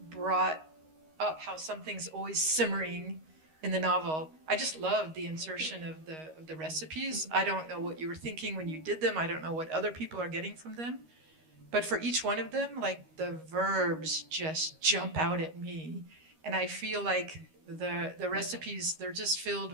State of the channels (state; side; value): late; left; 13 ms